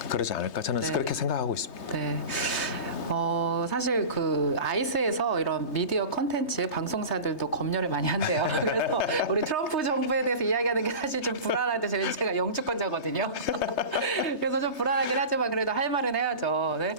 그러지 않을까 저는 네. 그렇게 생각하고 있습니다. 네. 사실 그 아이스에서 이런 미디어 컨텐츠 방송사들도 검열을 많이 한대요. 그래서 우리 트럼프 정부에 대해서 이야기하는 게 사실 좀 불안한데 제가 영주권자거든요. 그래서 좀 불안하긴 하지만 그래도 할 말은 해야죠. 네.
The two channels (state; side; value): late; right; 3.3 ms